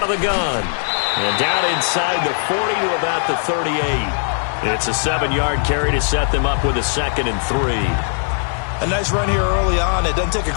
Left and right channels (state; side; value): silent; right; digital silence